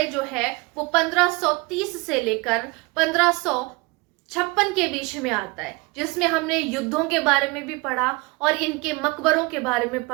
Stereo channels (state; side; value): quieter; left; 25.6 dB